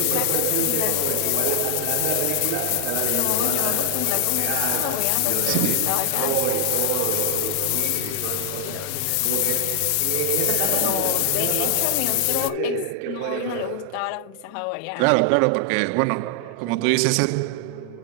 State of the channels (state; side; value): different; both; correlation 0.00